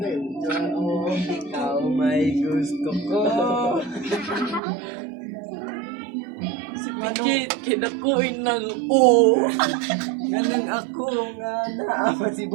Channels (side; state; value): left; drops out; at 4.6 s